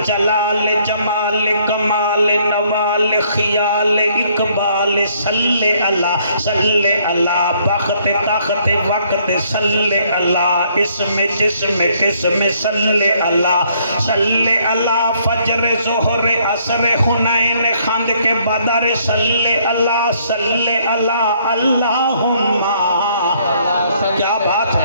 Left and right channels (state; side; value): inverted; both; correlation -0.66